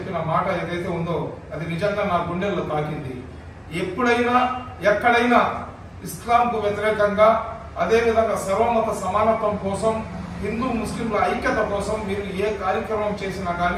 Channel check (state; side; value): identical; both; correlation 1.00